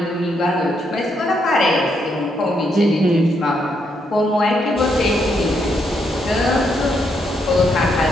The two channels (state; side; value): normal; both; correlation 0.77